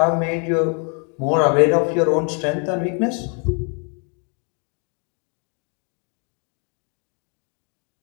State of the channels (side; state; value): right; quieter; 38.2 dB